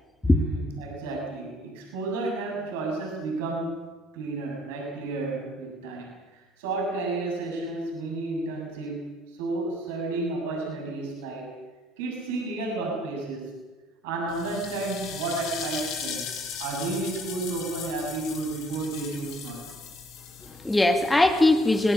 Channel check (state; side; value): normal; both; correlation 0.66